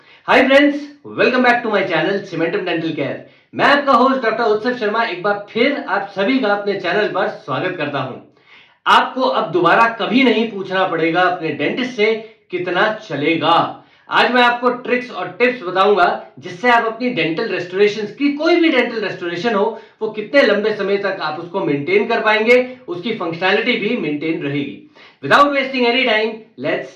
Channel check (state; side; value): identical; both; correlation 1.00